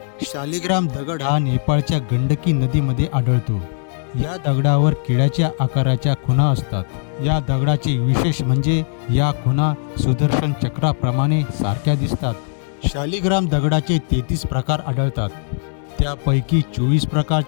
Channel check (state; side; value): silent; right; digital silence